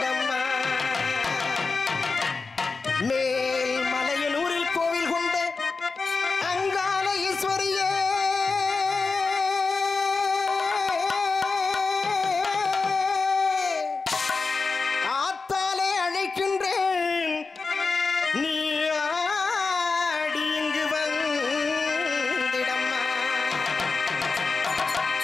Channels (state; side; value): quieter; right; 4.2 dB